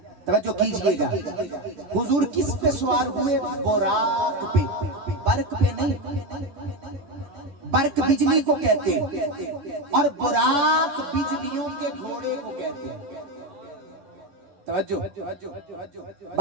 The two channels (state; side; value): late; left; 11 ms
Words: توجہ کیجئے گا، حضور کس پہ سوار ہوئے؟ براق پہ، برق پہ نہیں۔ برق بجلی کو کہتے ہیں اور براق بجلیوں کے گھوڑے کو کہتے ہیں۔ توجہ،